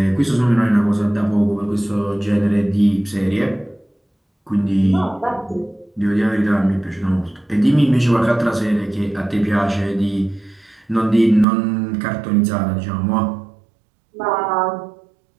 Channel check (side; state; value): left; drops out; at 11.5 s